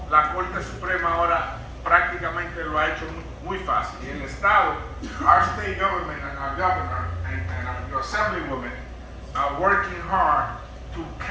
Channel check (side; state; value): both; identical; correlation 1.00